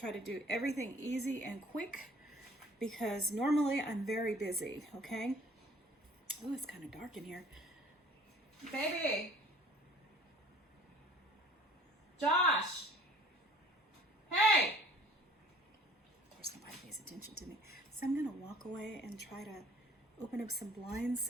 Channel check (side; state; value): both; normal; correlation 0.52